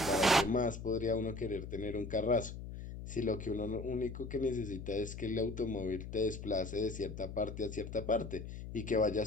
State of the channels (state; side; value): noise; left; hum, 9 dB below the sound